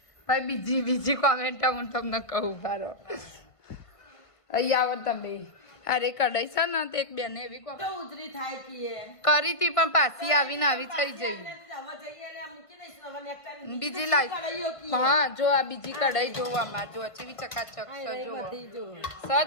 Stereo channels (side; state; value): right; late; 1.5 ms